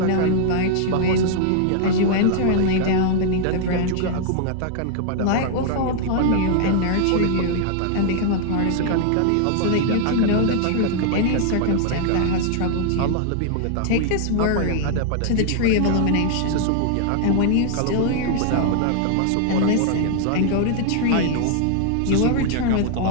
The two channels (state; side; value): different; both; correlation -0.01